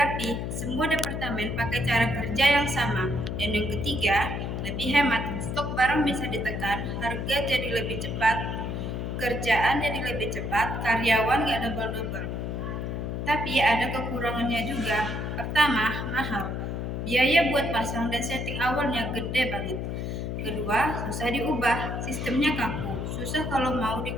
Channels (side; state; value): left; noise; hum, 3 dB below the sound